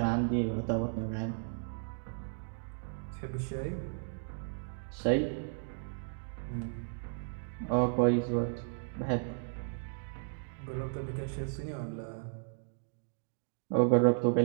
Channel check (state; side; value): silent; left; digital silence